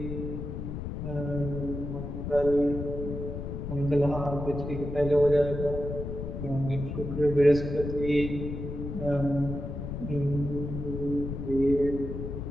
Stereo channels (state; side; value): noise; left; rumble, 6 dB below the sound